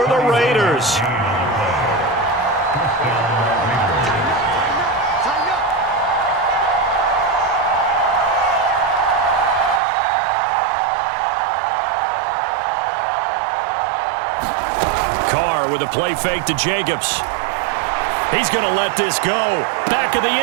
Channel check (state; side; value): drops out; left; at 9.8 s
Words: the Raiders. Carr with a play fake to Jacobs. He's going to let this go. Back of the